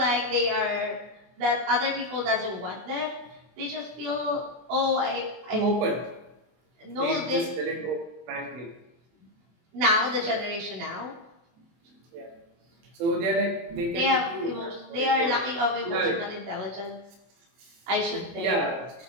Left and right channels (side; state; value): left; late; 24 ms